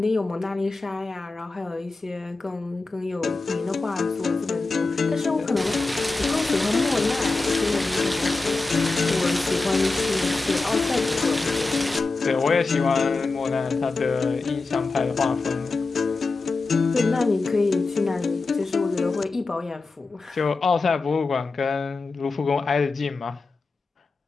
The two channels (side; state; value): right; quieter; 3.7 dB